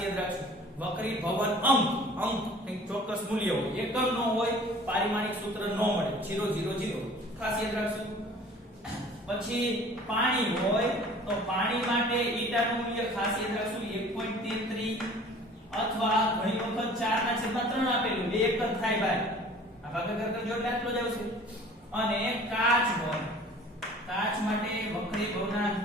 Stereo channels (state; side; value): normal; both; correlation 0.48